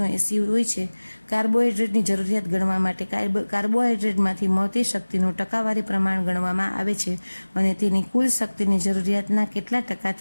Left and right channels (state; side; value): inverted; both; correlation -1.00